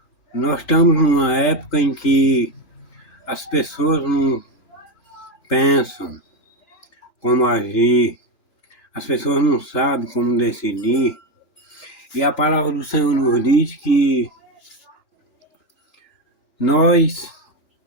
Nós estamos numa época em que as pessoas não pensam como agir, as pessoas não sabem como decidir, e a palavra do Senhor nos diz que nós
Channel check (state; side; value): late; right; 2.5 ms